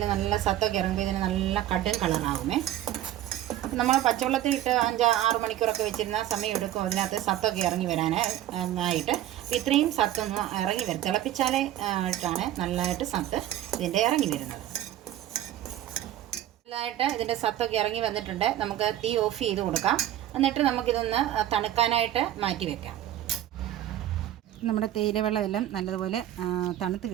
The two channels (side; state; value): left; quieter; 12.9 dB